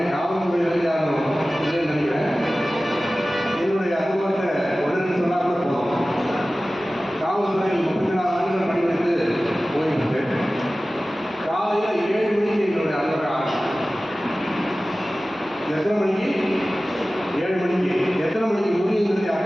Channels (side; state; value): both; normal; correlation 0.97